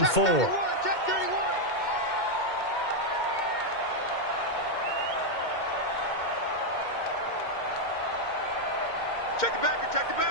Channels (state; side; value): late; right; 2.1 ms